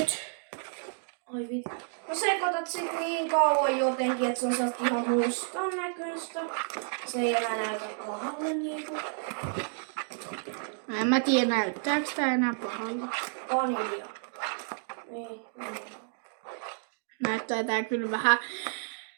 Oi vittu. No sekoitat sit niin kauan jotenkin, että se on sellaista ihan mustan näköistä. Se ei enää näytä pahalle niinku. En mä tiedä, näyttääks tää enää pahalta. Vanilja. Niin. Näyttää tää kyllä vähän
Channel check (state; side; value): silent; left; 57 dB below the other